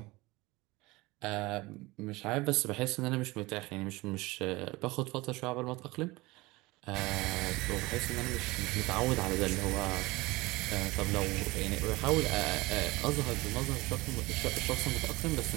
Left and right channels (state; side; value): quieter; left; 21.7 dB